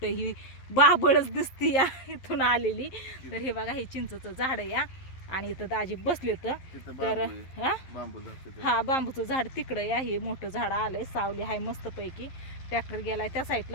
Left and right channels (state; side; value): late; right; 11 ms